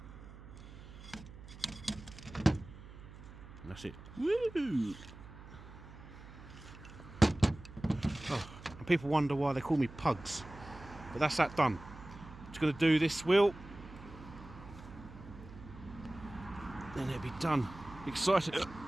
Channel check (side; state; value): right; noise; hum, 16 dB below the sound